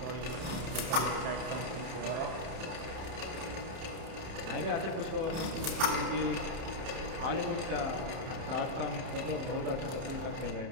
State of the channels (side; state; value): left; late; 31 ms